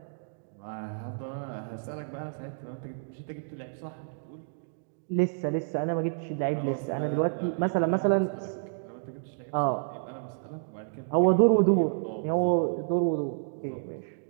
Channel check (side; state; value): left; silent; digital silence